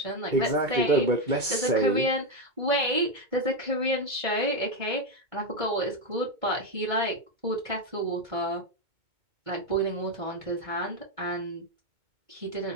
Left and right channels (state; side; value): late; left; 2.2 ms